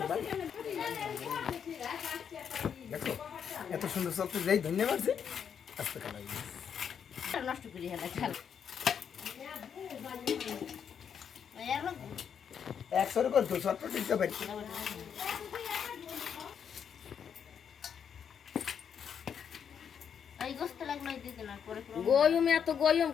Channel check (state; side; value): quieter; right; 7.7 dB